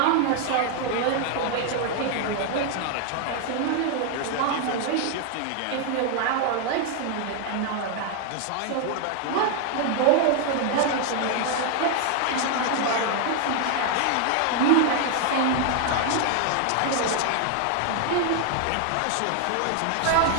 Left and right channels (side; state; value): both; different; correlation 0.00